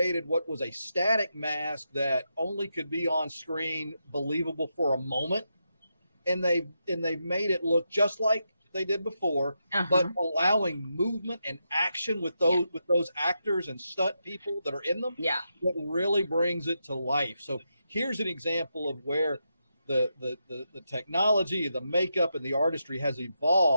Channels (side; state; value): both; inverted; correlation -0.85